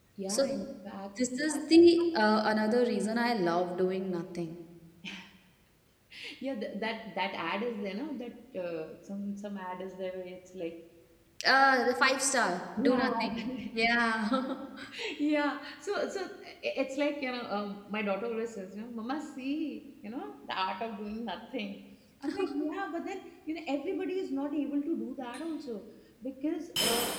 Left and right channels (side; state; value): both; identical; correlation 1.00